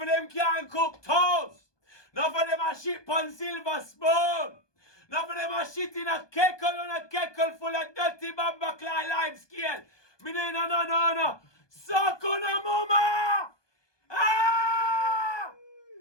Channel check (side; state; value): right; late; 1.2 ms